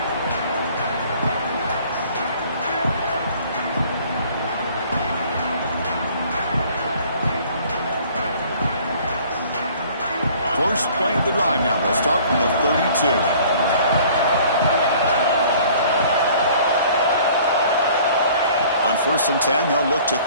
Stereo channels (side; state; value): both; inverted; correlation -0.53